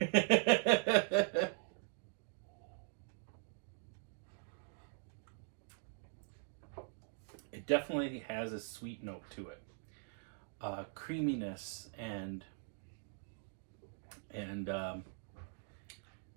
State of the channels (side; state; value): left; silent; digital silence